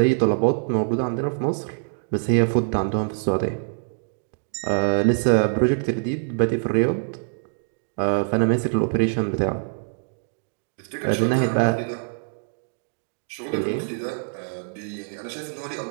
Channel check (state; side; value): silent; left; digital silence